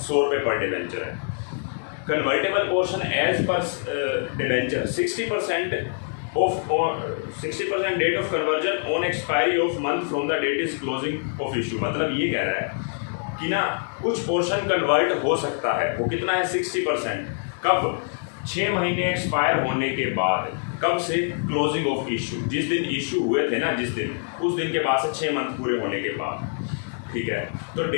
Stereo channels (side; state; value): right; silent; digital silence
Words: रुपये पर डिबेंचर है। Convertible portion as per debenture 60% date of conversion on expiry of month from the date is closing of issue. मतलब ये कह रहा है कि ना कुछ पोर्शन कन्वर्ट हो सकता है, वो कितना है 60%, कब 6 महीने एक्सपायर होने के बाद, कब से क्लोजिंग ऑफ इशू, जिस दिन इशू हुए थे ना, जिस दिन, उस दिन के बाद से 6 मंथ पूरे होने के बाद, ठीक है। तो